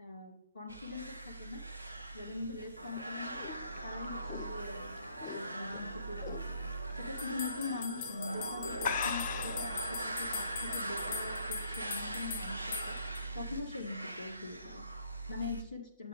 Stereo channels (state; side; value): inverted; both; correlation -0.66